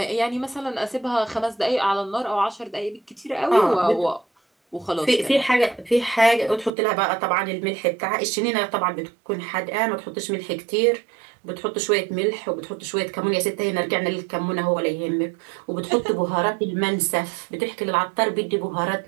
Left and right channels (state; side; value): drops out; left; at 6.7 s